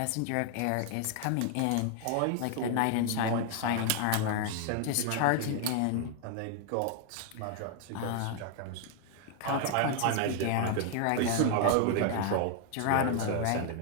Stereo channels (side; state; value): both; different; correlation 0.00